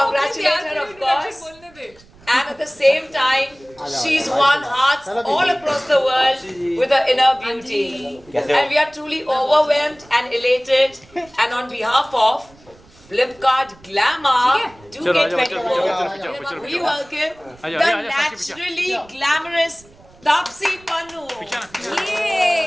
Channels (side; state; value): right; noise; rumble, 27 dB below the sound